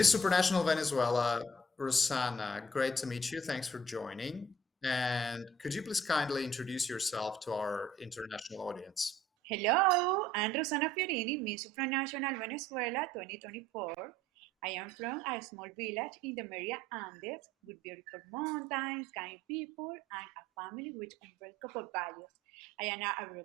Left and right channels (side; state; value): both; normal; correlation 0.58